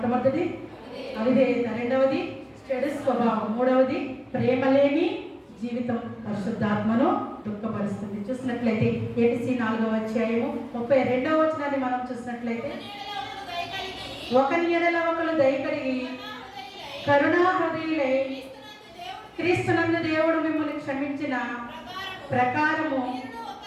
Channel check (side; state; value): both; identical; correlation 1.00